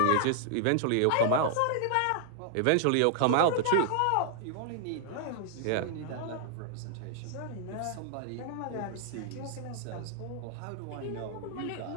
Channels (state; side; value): different; both; correlation 0.00